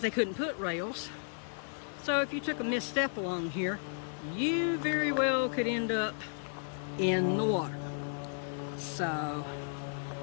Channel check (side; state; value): right; silent; 55 dB below the other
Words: they couldn't put rails. So if you took a misstep along here, you very well could end up in the water. So,